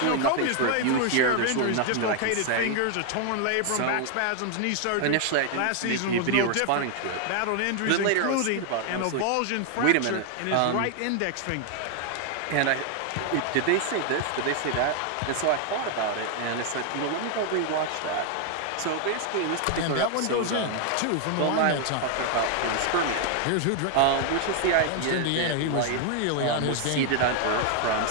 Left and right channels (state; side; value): different; both; correlation 0.00